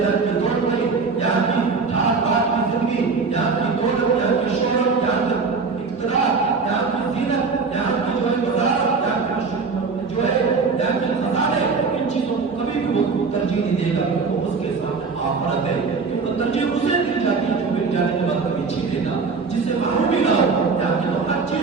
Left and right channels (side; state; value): left; quieter; 4.7 dB